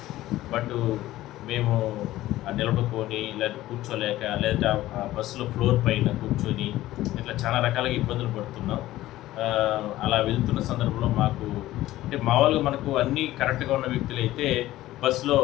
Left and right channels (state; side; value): quieter; right; 15.6 dB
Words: బట్ మేము నిలబడుకొని లేదంటే కూర్చోలేక లేదంటే ఆ బస్సులో ఫ్లోర్ పైన కూర్చొని ఇట్లా చాలా రకాలుగా ఇబ్బందులు పడుతున్నాం. అలా వెళ్తున్న సందర్భంలో మాకు అంటే మామూలుగా మనకు అన్నీ కరెక్ట్గా ఉన్న వ్యక్తులైతే బస్సులో